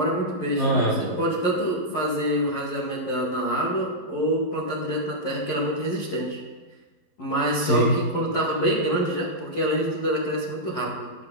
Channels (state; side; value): late; right; 11 ms